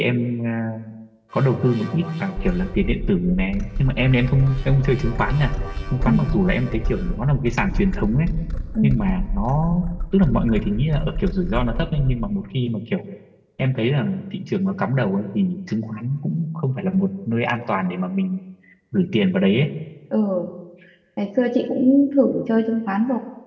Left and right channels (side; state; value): both; identical; correlation 1.00